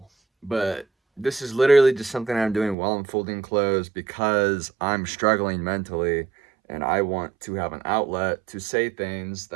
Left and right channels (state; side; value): drops out; left; at 2.8 s